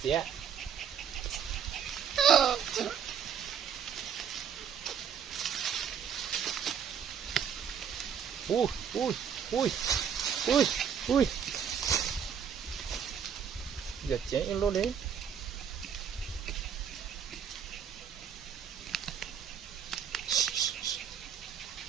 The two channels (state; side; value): quieter; left; 7.9 dB